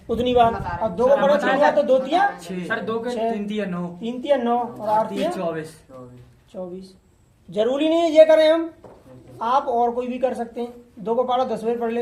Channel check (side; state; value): both; identical; correlation 1.00